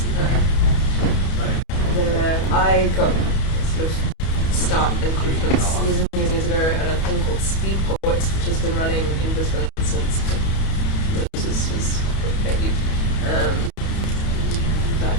I got sort of start and confidence years ago at a thing called Speed Poets, which has been running in Brisbane since Moses was a baby.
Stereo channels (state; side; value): late; right; 31 ms